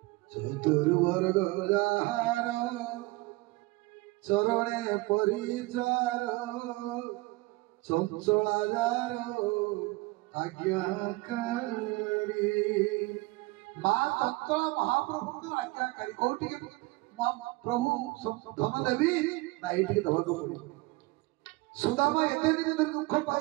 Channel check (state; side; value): quieter; left; 22.2 dB